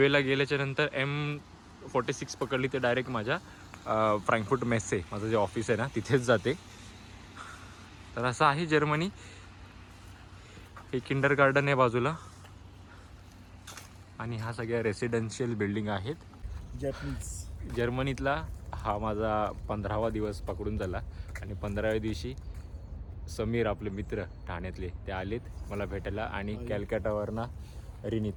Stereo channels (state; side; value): identical; both; correlation 1.00